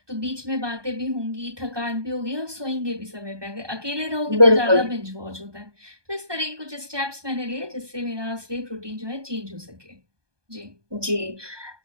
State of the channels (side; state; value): left; late; 1.2 ms